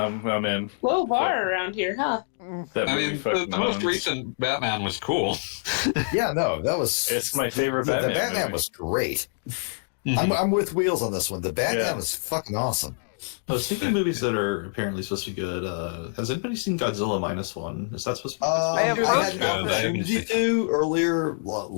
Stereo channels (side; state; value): right; silent; digital silence